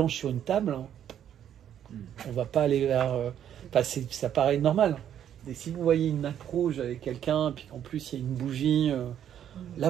sur une table, on va pas aller vers... ça paraît normal. Et si vous voyez une nappe rouge avec quelqu'un, puis en plus il y a une bougie,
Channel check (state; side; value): quieter; left; 9.9 dB